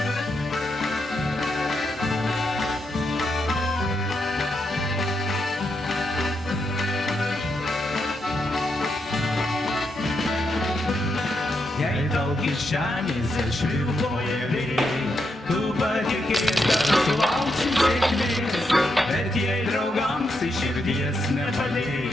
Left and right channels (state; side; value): normal; both; correlation 0.82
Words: Jei tau kišenėse švilpauja vėjai, tu patikėk, kad sulauksi sėkmės, bet jei draugams iš širdies